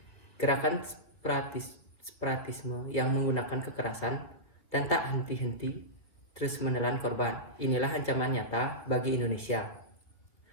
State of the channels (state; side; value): late; right; 1.7 ms